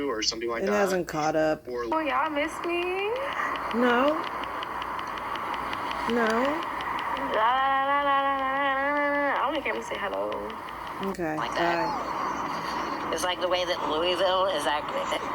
or something like that. It hasn't caught up. Or, oh, y'all miss me? No. I only came to say hello. Okay. Like that. It's like the way that Louisville is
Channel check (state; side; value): identical; both; correlation 1.00